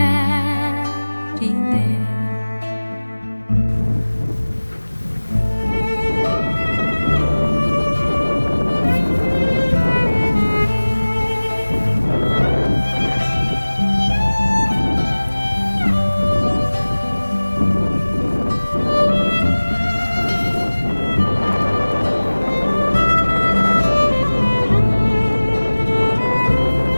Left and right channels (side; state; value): both; inverted; correlation -1.00